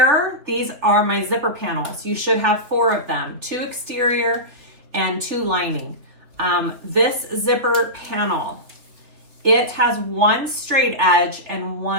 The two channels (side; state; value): left; late; 3.6 ms